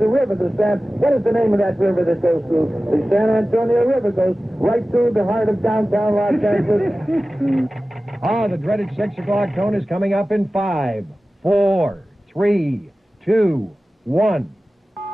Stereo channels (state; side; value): normal; both; correlation 0.96